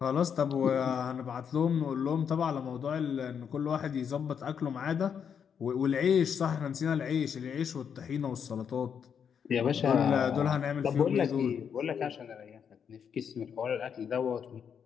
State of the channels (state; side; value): quieter; right; 7.5 dB